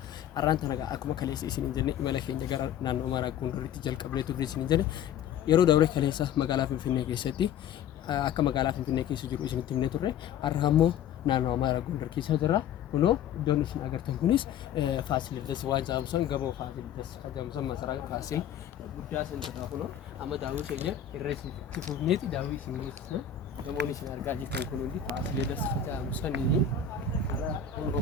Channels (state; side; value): quieter; right; 8.5 dB